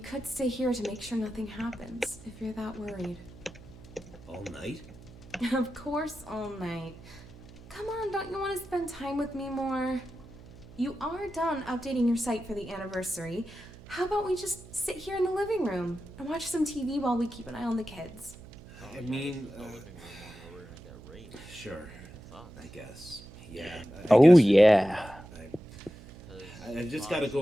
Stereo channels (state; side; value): noise; right; hum, 19 dB below the sound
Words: stay here to make sure nothing happens, if you're that worried. All night? Of course, all night. Come on, don't you want to spend time with me more? You are done updating your site for the anniversary. How about we just sit here in the living room and watch some TV while we keep an eye on the kids? I mean, The living room one where we're gonna get raped. sure, Fuck. I guess. Yeah. I Oh, guess- yeah. I just gotta